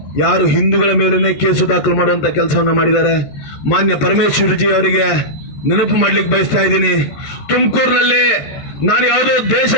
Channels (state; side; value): late; right; 13 ms